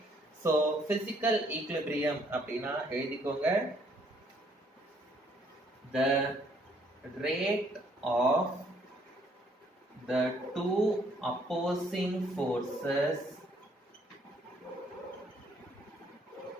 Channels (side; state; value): both; normal; correlation 0.66